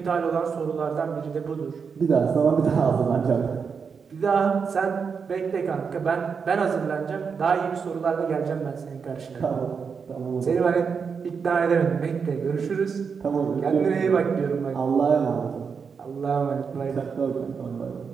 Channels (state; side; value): quieter; left; 5.9 dB